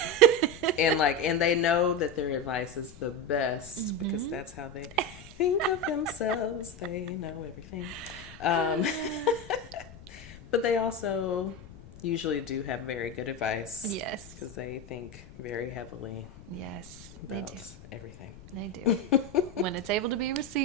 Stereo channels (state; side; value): noise; left; rumble, 18 dB below the sound